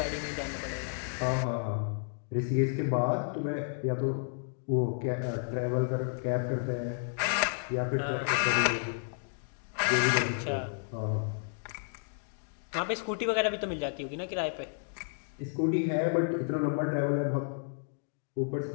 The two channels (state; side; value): silent; right; digital silence